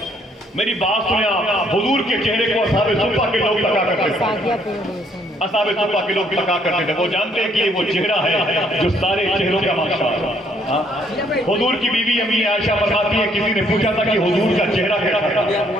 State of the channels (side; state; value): both; normal; correlation 0.67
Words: میری بات سنیں آپ، حضور کے چہرے کو اصحاب صفہ کے لوگ تکا کرتے تھے، اصحاب صفہ کے لوگ تکا کرتے تھے، وہ جانتے ہیں کہ یہ وہ چہرہ ہے جو سارے چہروں کا بادشاہ ہے۔ حضور کی بیوی امی عائشہ فرماتی ہے کسی نے پوچھا تھا کہ حضور کا چہرہ کیسا تھا،